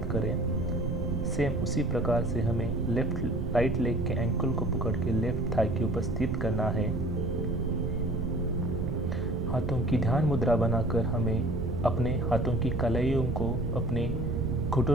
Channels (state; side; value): noise; right; rumble, 3 dB below the sound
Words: करें। सेम उसी प्रकार से हमें राइट लेग के एंकल को पकड़ के लेफ्ट थाई के ऊपर स्थित करना है। हाथों की ध्यान मुद्रा बनाकर हमें अपने हाथों की कलाइयों को अपने